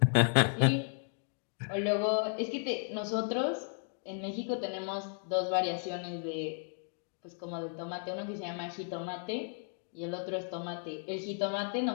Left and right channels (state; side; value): silent; right; 55 dB below the other